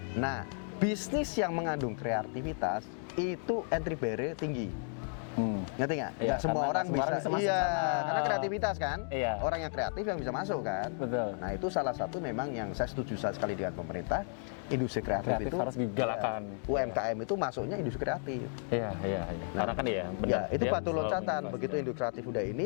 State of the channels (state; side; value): silent; right; 56 dB below the other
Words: Nah, bisnis yang mengandung kreativitas itu entry barrier tinggi. Ngerti nggak? Nggak semua orang bisa. Iya, karena kreativitas kan. Iya. Orang yang kreatif yang bisa masuk kan. Betul. Nah, itu salah satu memang yang saya setuju sekali dengan pemerintah. Industri kreatif itu harus digalakan. UMKM itu masuknya industri kreatif. Iya. Nah, karena kan benar. Ya, itu batu loncatan. Begitu industri kreatif udah